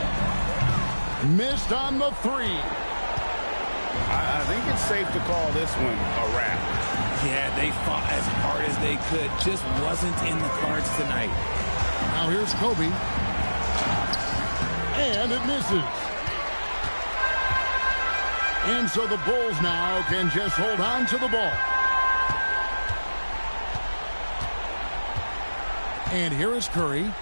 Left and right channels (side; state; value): both; inverted; correlation -1.00